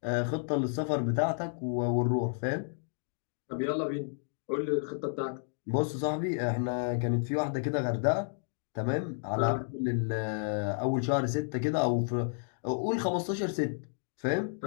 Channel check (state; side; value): silent; right; digital silence